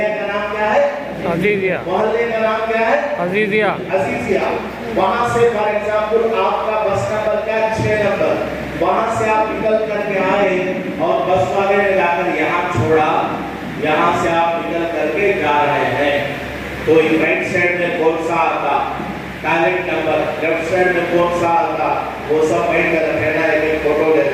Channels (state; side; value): identical; both; correlation 1.00